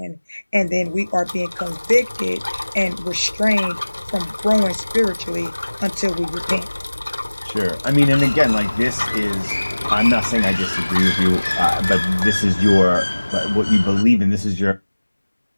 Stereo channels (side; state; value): both; inverted; correlation -1.00